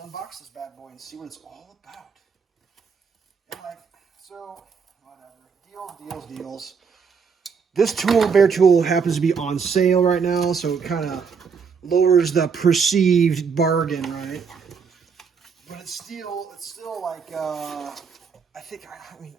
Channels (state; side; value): quieter; left; 5.9 dB